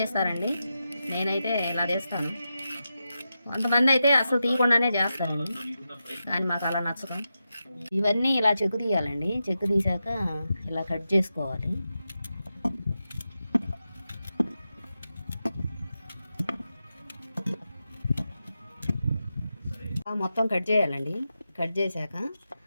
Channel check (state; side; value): inverted; both; correlation -0.89